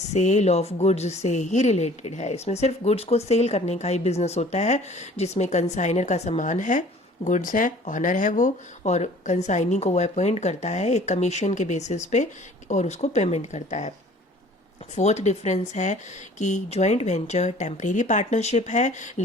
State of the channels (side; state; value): both; normal; correlation 0.50